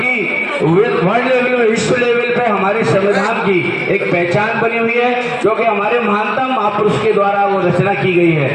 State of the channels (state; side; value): identical; both; correlation 1.00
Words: वर्ल्ड लेवल में, विश्व लेवल पे हमारे संविधान की एक पहचान बनी हुई है, क्योंकि हमारे महानतम महापुरुष के द्वारा वो रचना की गई